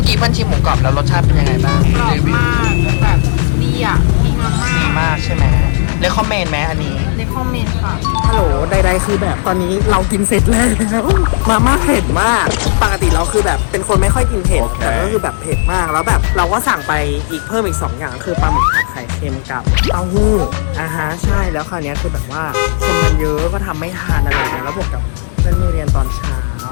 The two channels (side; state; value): right; silent; digital silence